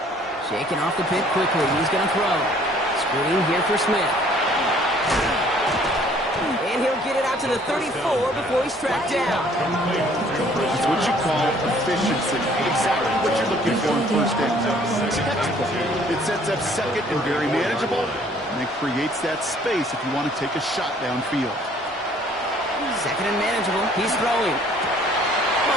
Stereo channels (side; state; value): both; normal; correlation 0.58